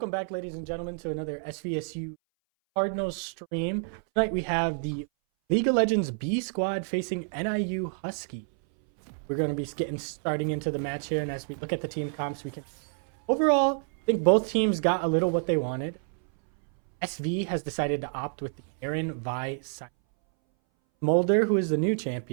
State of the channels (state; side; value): silent; left; 59 dB below the other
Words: back, ladies and gentlemen, to another SVSU Cardinals stream. Tonight we have the League of Legends B squad facing NIU Huskies. We're going to be starting into the match here, and as we look at the team comps, we can overall I think both teams got a little what they wanted. SV has decided to opt with the Aaron Vi Mulder, who is the new